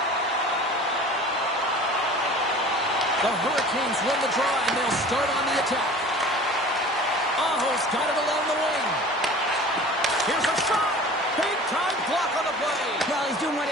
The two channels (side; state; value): both; normal; correlation 0.42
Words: The Hurricanes win the draw, and they'll start on the attack. Aho's got it along the wing. Here's a shot. Big-time block on the play. Well, he's doing what